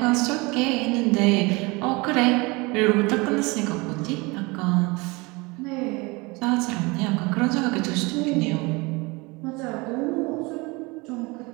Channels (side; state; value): left; quieter; 25.6 dB